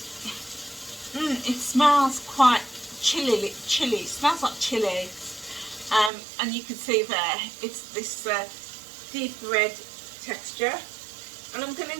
it smells quite chilly. It smells like chili. And you can see there, it's this deep red texture. And I'm going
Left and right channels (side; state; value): left; drops out; at 6.1 s